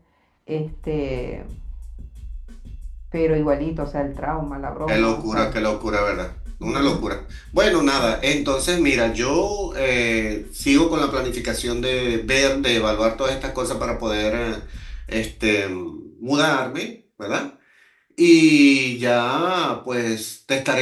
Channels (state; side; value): identical; both; correlation 1.00